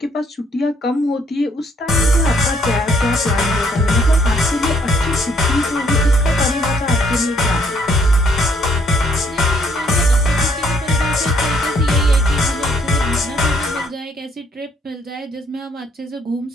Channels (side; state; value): both; normal; correlation 0.67